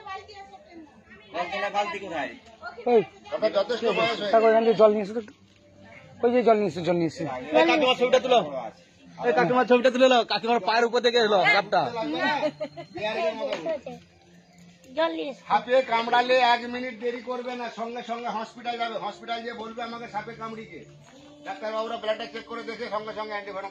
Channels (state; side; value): identical; both; correlation 1.00